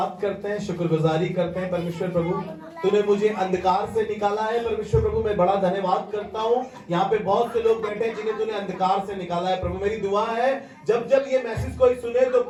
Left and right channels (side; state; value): both; identical; correlation 1.00